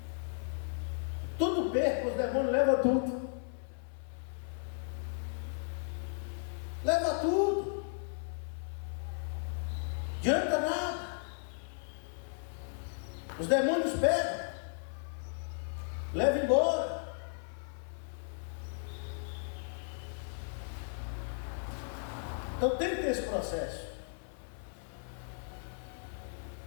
Tudo perca, os demônios levam tudo. Leva tudo. Adianta nada. Os demônios pegam, levam embora. Então tem que ter esse processo.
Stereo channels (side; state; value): right; silent; 54 dB below the other